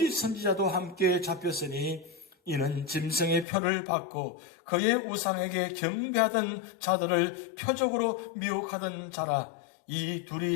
선지자도 함께 잡혔으니 이는 짐승의 표를 받고 그의 우상에게 경배하던 자들을 표적으로 미혹하던 자라. 이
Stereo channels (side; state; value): right; drops out; at 3.5 s